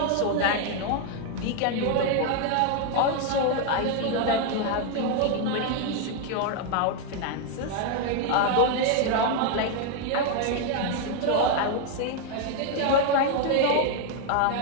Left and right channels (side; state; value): both; different; correlation 0.01